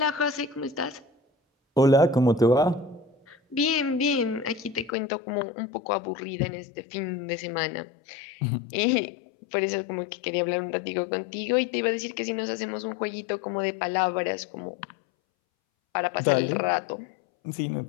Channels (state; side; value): drops out; right; at 4.9 s